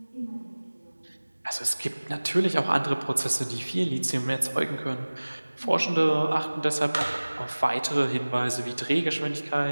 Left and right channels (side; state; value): both; inverted; correlation -1.00